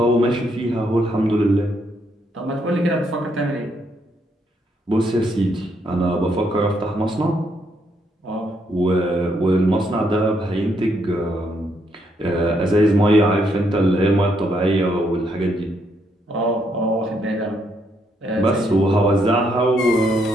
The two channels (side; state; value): both; normal; correlation 0.75